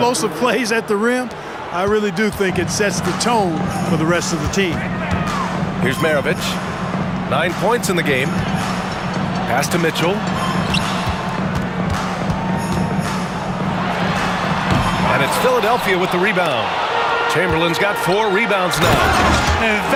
plays at the rim, I really do think it sets the tone for the rest of the team. Here's Maravich. 9 points in the game. Pass to Mitchell. It's Philadelphia with the rebound. Chamberlain's got 4 rebounds now. And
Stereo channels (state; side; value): identical; both; correlation 1.00